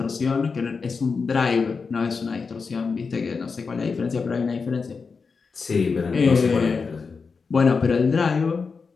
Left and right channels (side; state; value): right; quieter; 4.9 dB